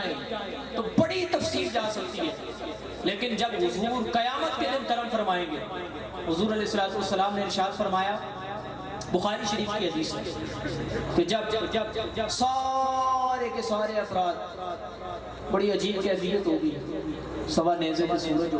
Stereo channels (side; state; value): both; identical; correlation 1.00